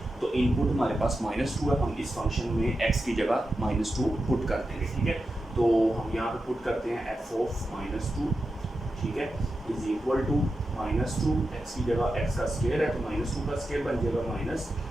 तो इनपुट हमारे पास माइनस 2 है। हम इस फंक्शन में एक्स की जगह माइनस 2 पुट कर देंगे। ठीक है, तो हम यहाँ पे पुट करते हैं एफ ऑफ माइनस 2। ठीक है, is equal to minus 2। X की जगह एक्स का स्क्वायर है तो माइनस 2 का स्क्वायर बन जाएगा माइनस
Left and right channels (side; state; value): both; normal; correlation 0.90